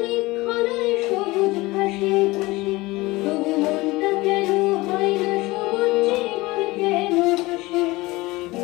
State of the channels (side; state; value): right; quieter; 21.0 dB